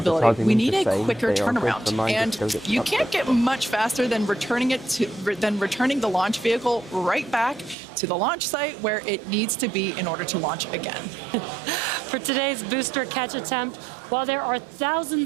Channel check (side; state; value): left; drops out; at 7.8 s